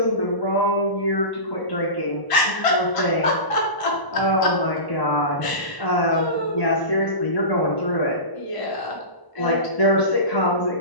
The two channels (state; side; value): late; right; 1.0 ms